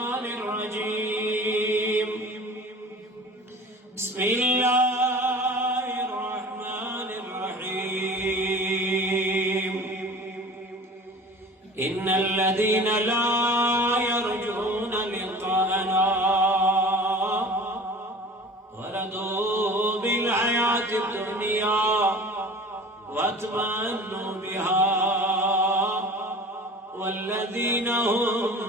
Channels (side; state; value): both; normal; correlation 0.41